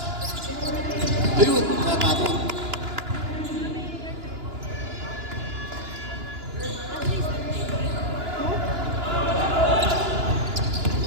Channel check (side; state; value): left; late; 2.9 ms